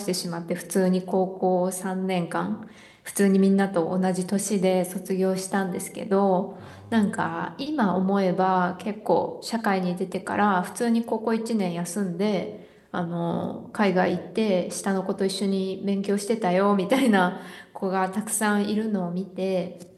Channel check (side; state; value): both; identical; correlation 1.00